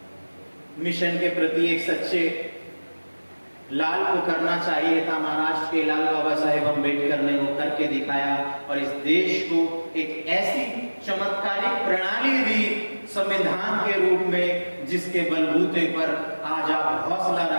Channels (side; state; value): both; inverted; correlation -1.00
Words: मिशन के प्रति एक सच्चे लाल को करना चाहिए था, महाराष्ट्र के लाल बाबा साहेब अंबेडकर ने वो करके दिखाया और इस देश को एक ऐसी चमत्कारिक प्रणाली दी संविधान के रूप में, जिसके बलबूते पर आज आप हौसला